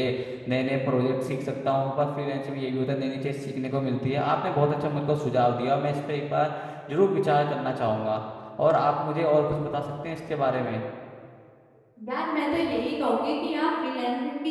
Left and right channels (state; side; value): identical; both; correlation 1.00